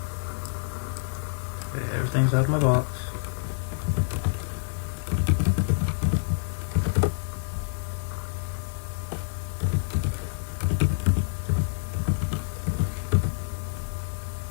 Okay, everything's out of my box.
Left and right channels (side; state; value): right; silent; digital silence